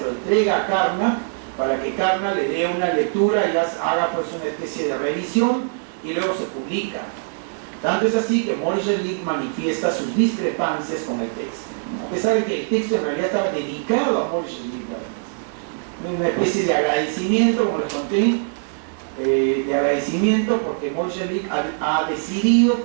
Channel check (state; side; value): silent; left; 64 dB below the other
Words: entrega a Carnap para que Carnap le dé una lectura y haga pues una especie de revisión y luego se publica. Tanto es así que Moishe-Lick manifiesta sus discrepancias con el texto, a pesar de que el texto en realidad estaba dedicado a Moishe-Lick, una especie de agradecimiento, como les conté, de agradecimiento porque Moishe-Lick ha decidido